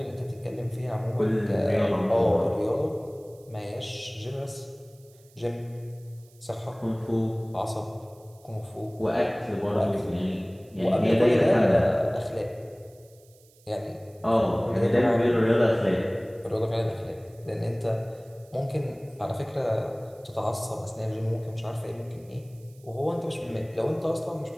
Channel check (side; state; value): right; noise; hiss, 29 dB below the sound